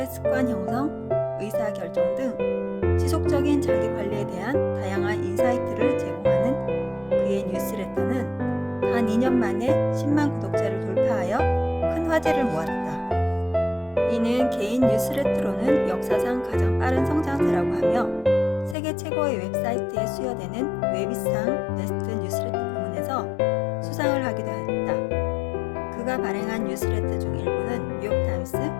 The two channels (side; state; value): right; drops out; at 18.8 s